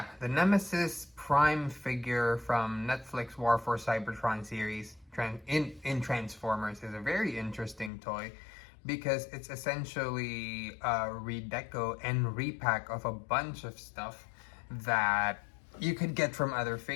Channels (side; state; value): right; drops out; at 7.9 s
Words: the Nemesis Prime figure from Netflix War for Cybertron series in Transformers is a very interesting toy because it's essentially a redeco and repack of a bunch of stuff that you could get from other